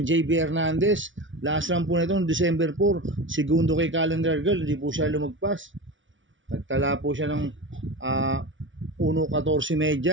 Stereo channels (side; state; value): left; late; 0.56 ms